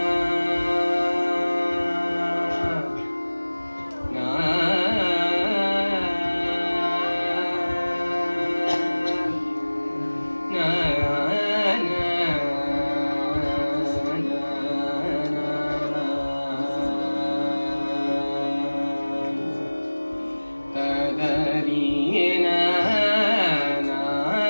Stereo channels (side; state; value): both; inverted; correlation -1.00